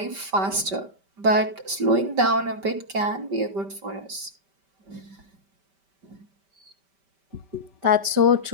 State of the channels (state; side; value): late; left; 5.1 ms